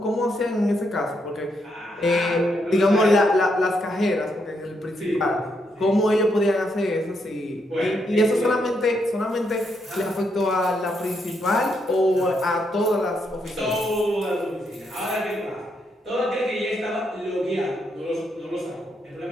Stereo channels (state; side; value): normal; both; correlation 0.78